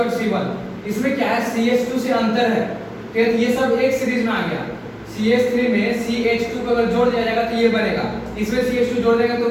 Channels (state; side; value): identical; both; correlation 1.00